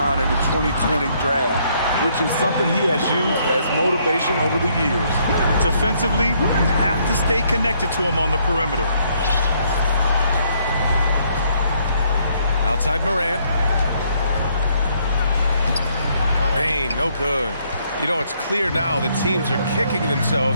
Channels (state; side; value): inverted; both; correlation -0.69